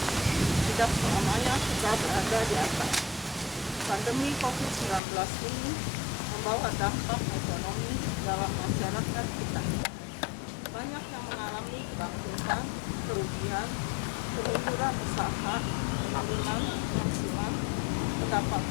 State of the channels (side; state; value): right; drops out; at 5.0 s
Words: tidak selamanya kita berada di atas. Pandemi COVID-19 ini membawa dampak ekonomi dalam masyarakat kita. Banyak yang mengalami kebangkrutan, kerugian, kemunduran usaha, penurunan penghasilan,